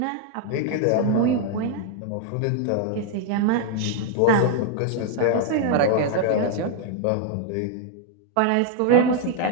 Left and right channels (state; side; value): different; both; correlation 0.00